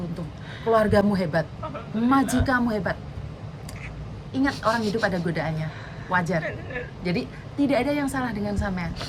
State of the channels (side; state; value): both; identical; correlation 1.00